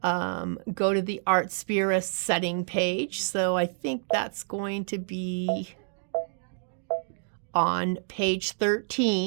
go to the Artspira setting page. So I think that's going to be on page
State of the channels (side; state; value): left; silent; digital silence